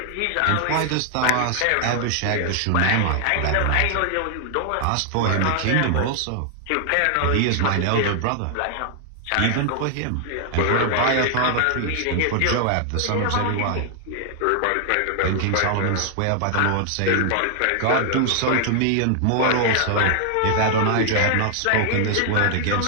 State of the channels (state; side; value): different; both; correlation 0.00